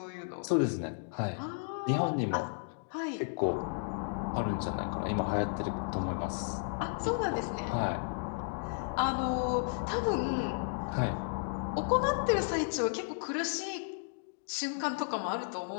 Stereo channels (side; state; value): right; silent; digital silence